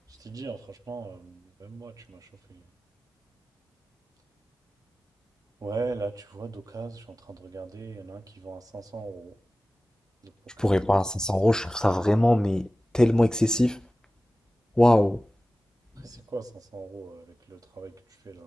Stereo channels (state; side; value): normal; both; correlation 0.96